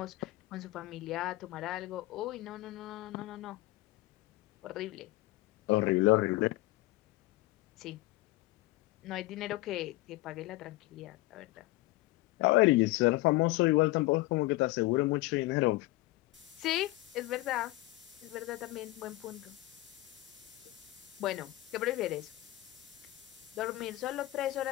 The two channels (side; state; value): right; quieter; 19.0 dB